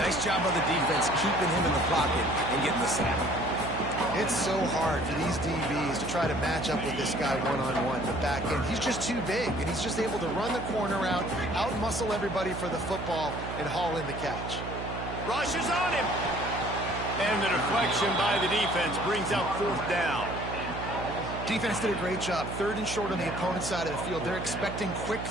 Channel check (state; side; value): noise; right; hum, 7 dB below the sound